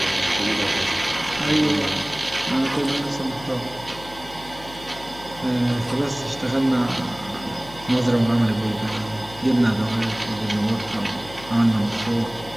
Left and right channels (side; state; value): left; noise; hum, 18 dB below the sound